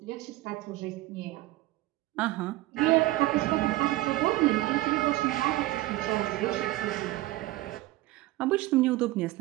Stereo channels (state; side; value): quieter; left; 17.4 dB